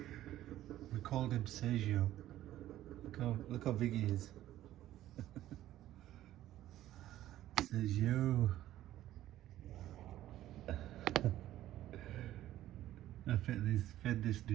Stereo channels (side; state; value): left; quieter; 13.7 dB